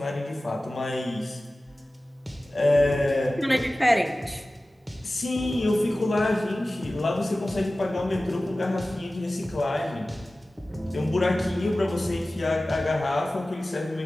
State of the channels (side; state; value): both; normal; correlation 0.96